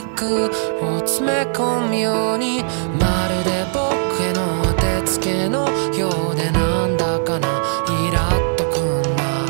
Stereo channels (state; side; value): silent; left; 66 dB below the other